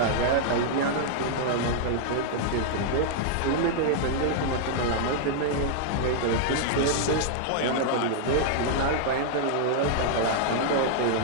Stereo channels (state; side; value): different; both; correlation -0.01